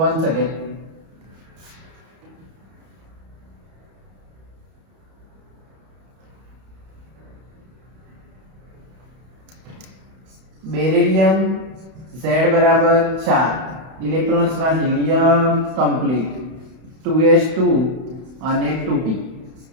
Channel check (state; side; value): late; left; 31 ms